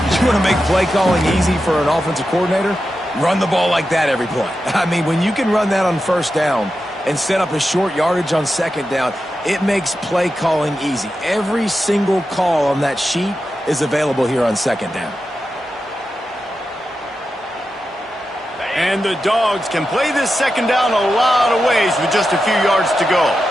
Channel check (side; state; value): both; normal; correlation 0.90